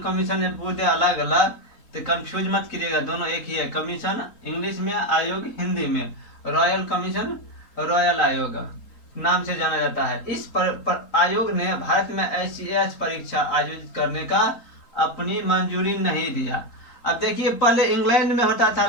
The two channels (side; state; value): right; late; 3.8 ms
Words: कमीशन ये पूरे अलग अलग, तो कंफ्यूज मत कीजिएगा, दोनों एक ही है। कमीशन इंग्लिश में, आयोग हिंदी में। रॉयल कमीशन रॉयल आयोग नाम से जाना जाता है। इस आयोग ने भारत में ICS परीक्षा आयोजित करने का अपनी मंजूरी नहीं दिया। अब देखिए, पहले इंग्लैंड में होता था,